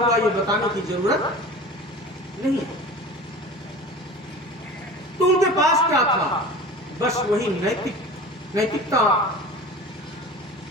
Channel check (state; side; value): normal; both; correlation 0.37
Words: ये बताने की जरूरत नहीं है। तो उनके पास क्या था? बस वही नैतिकता